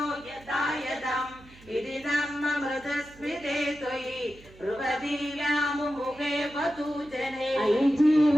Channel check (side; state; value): right; noise; hum, 23 dB below the sound